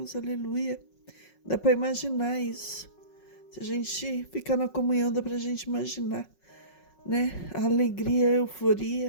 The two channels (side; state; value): right; late; 5.4 ms